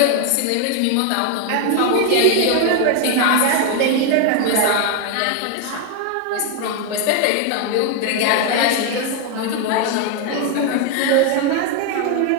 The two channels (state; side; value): different; both; correlation 0.01